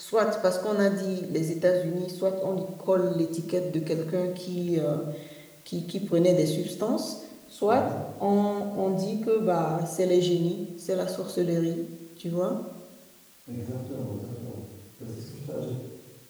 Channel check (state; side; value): identical; both; correlation 1.00